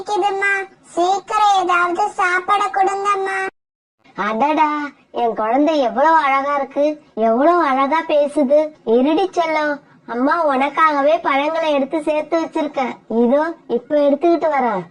சீக்கிரம் ஏதாவது சாப்பாட கொடுங்கம்மா. அடடா, என் குழந்தை எவ்வளவு அழகா இருக்கு, எவ்வளவு அழகா பேசுது. இருடி செல்லம், அம்மா உனக்காகவே பழங்களை எடுத்து சேர்த்து வச்சிருக்கேன், இதோ இப்ப எடுத்துக்கிட்டு வரேன்.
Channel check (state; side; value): identical; both; correlation 1.00